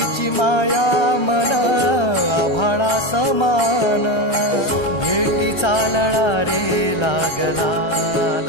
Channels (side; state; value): right; late; 1.3 ms